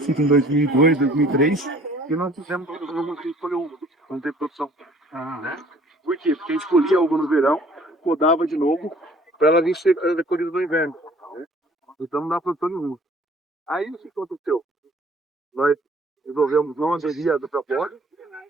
em 2002, 2003, e nós fizemos algumas que escolheu uva, não teve produção. Né? Por quê? Porque a gente colhia a uva no verão, podava de novo, para ela vir ser colhida no inverno. Né? Então não dá produção nenhuma. Aí o que aconteceu? Nós resolvemos não aderir à proposta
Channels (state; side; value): normal; both; correlation 0.54